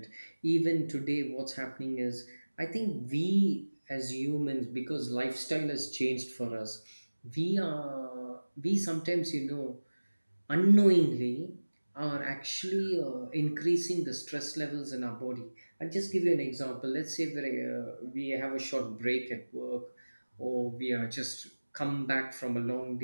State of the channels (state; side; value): inverted; both; correlation -1.00